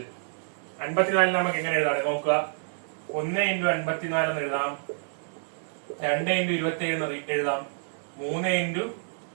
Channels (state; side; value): silent; left; 59 dB below the other